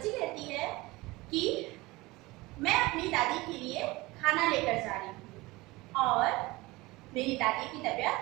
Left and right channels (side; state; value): left; quieter; 21.4 dB